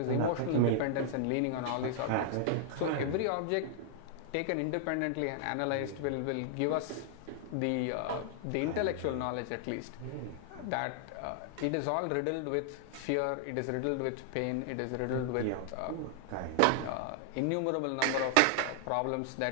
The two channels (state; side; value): different; both; correlation -0.01